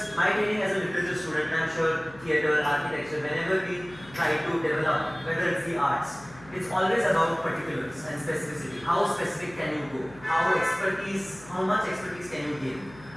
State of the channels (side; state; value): left; noise; hum, 21 dB below the sound